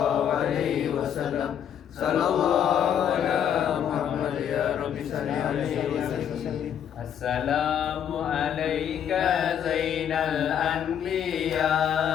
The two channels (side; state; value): right; quieter; 9.1 dB